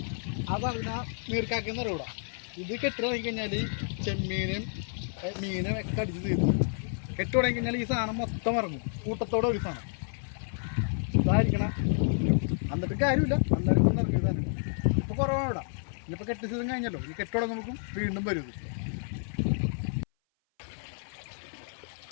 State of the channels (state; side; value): silent; right; 56 dB below the other